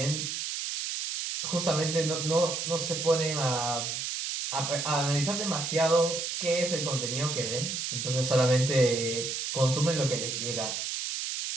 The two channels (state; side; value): noise; right; hiss, 3 dB below the sound